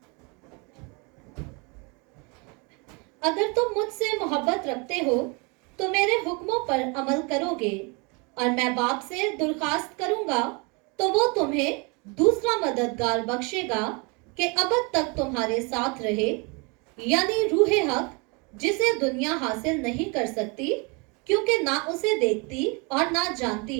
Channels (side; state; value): left; quieter; 30.6 dB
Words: अगर तुम मुझसे मोहब्बत रखते हो तो मेरे हुक्मों पर अमल करोगे, और मैं बाप से दरख्वास्त करूंगा तो वो तुम्हें दूसरा मददगार बख्शेगा कि अब तक तुम्हारे साथ रहे, यानी रूहे हक, जिसे दुनिया हासिल नहीं कर सकती क्योंकि ना उसे देखती और ना जानती